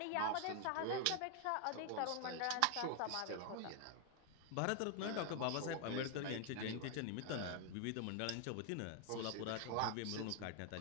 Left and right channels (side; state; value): both; different; correlation 0.00